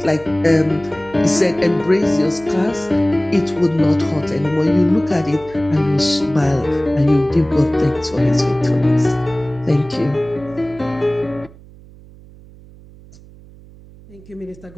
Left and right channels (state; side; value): noise; right; hum, 22 dB below the sound